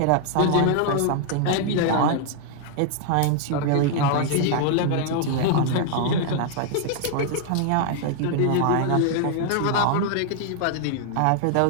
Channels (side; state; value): both; different; correlation 0.00